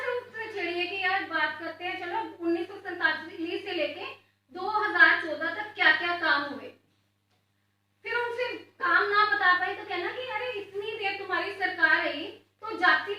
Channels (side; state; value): both; identical; correlation 1.00